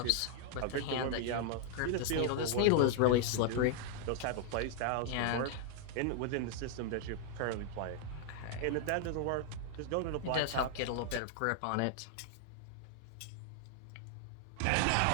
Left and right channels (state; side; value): different; both; correlation 0.00